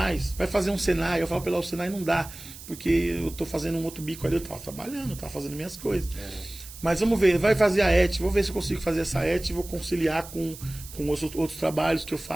fazer um Senai. Eu falo para ela, o Senai não dá, porque eu estou fazendo um outro bico ali, eu estava trabalhando, estava fazendo minhas coisas. Mas vamos ver, vai fazer a ET, vou ver se eu consigo fazer essa ET e vou conciliar com outros trabalhos que eu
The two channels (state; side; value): noise; right; hiss, 15 dB below the sound